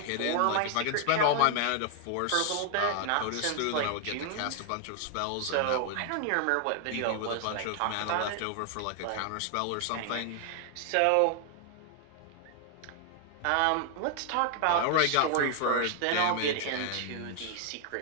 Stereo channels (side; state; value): both; different; correlation 0.00